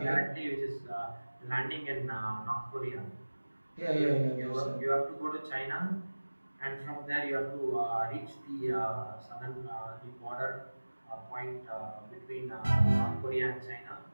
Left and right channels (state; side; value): inverted; both; correlation -1.00